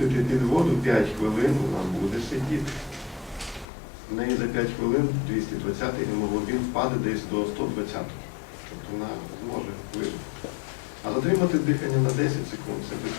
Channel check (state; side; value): drops out; right; at 3.7 s